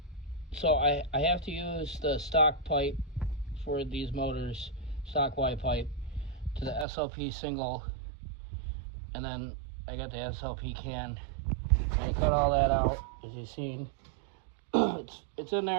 So I have to use the stock pipe for these motors, stock Y pipe, to the SLP single, and then I got the SLP can. I'm gonna cut all that out, as you've seen. It's in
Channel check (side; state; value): left; drops out; at 6.9 s